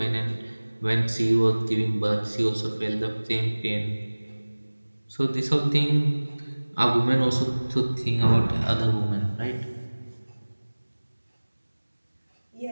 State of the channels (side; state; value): both; inverted; correlation -1.00